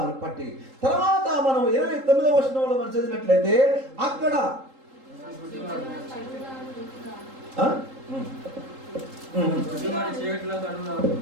పట్టి. తర్వాత మనం 29వ వచనంలో మనం చదివినట్లయితే అక్కడ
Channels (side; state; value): left; late; 3.8 ms